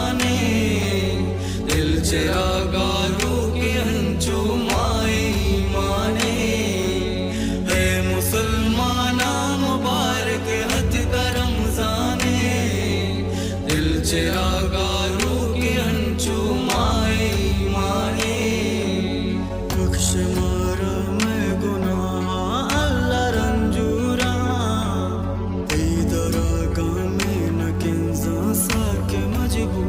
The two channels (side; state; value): both; identical; correlation 1.00